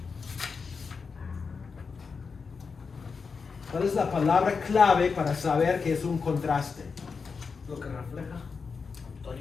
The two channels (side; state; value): right; quieter; 5.2 dB